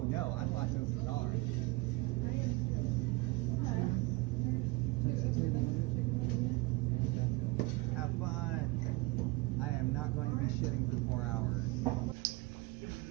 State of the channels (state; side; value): quieter; left; 23.1 dB